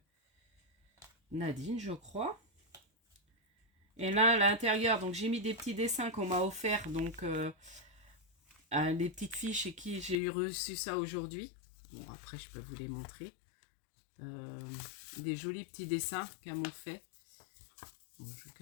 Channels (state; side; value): drops out; right; at 10.2 s